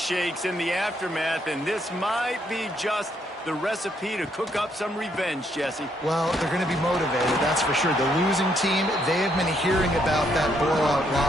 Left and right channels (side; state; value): both; normal; correlation 0.73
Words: in the aftermath, and this might be just the recipe to cook up some revenge, Jesse. Well, they're going to be motivated, that's for sure. The losing team, they have been hearing about that blowout